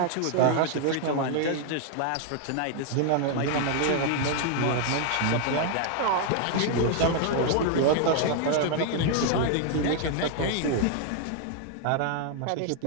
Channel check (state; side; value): different; both; correlation 0.00